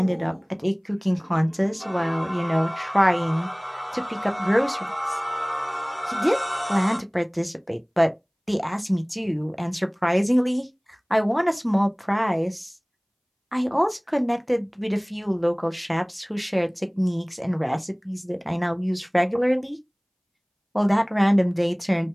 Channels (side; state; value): both; identical; correlation 1.00